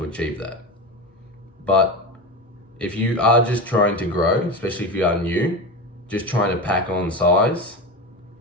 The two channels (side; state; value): both; normal; correlation 0.23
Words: achieve that. But if you are just trying to grow, especially if you are new, just trying to pack on size,